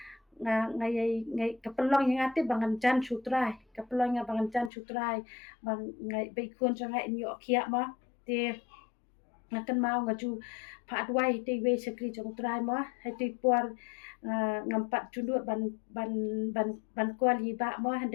ngai kapelong yang ate bangan jan sutrai kapelong yang bangan jan sutrai bang ngai be kun jong ai nyo kia ma te ngakan mau ngaju pa adwai te we sekri jong trai ma hai te por ngampat jundut ban kwal hi ba ma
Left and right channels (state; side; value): drops out; right; at 4.7 s